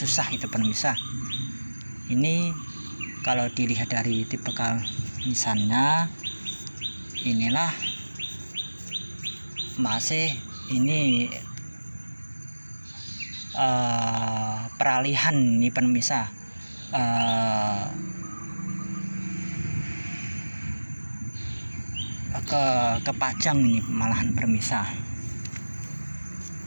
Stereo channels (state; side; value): inverted; both; correlation -1.00